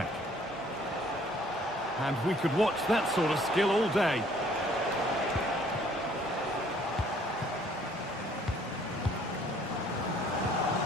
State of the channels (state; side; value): normal; both; correlation 0.59